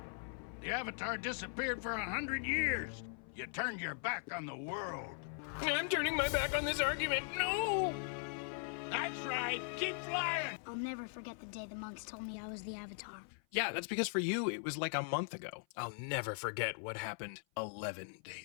The Avatar disappeared for 100 years. You turned your back on the world. I'm turning my back on this argument. No! That's right. Keep flying. I'll never forget the day the monks told me I was the Avatar. Yeah, that's because for you, it was like a month ago. I'll never forget what happened 11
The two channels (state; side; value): silent; right; 51 dB below the other